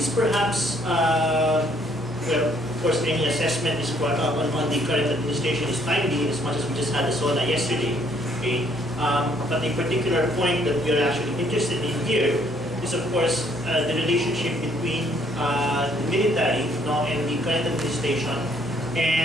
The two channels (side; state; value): both; normal; correlation 0.65